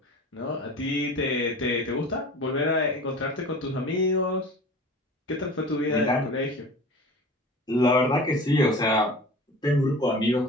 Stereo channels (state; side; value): normal; both; correlation 0.39